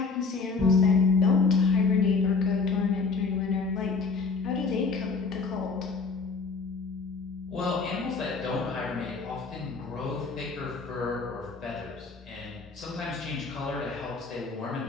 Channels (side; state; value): right; quieter; 4.5 dB